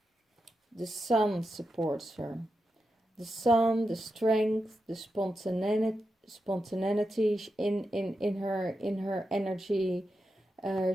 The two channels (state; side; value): normal; both; correlation 0.88